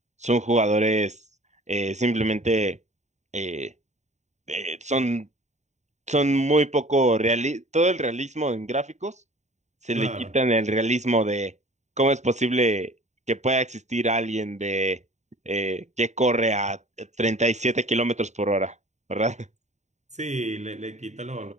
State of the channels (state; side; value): late; left; 0.34 ms